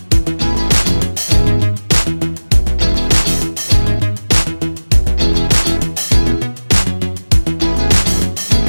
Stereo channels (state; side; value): inverted; both; correlation -1.00